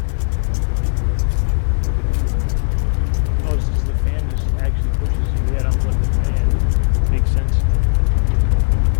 Oh, this is the fan just actually pushes you. Yeah, don't let the fan. Makes sense.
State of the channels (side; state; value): right; silent; 55 dB below the other